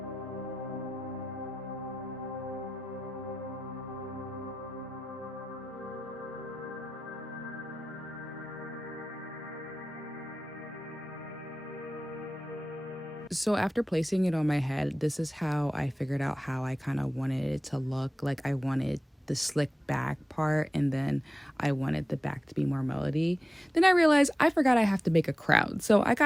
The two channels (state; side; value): normal; both; correlation 0.95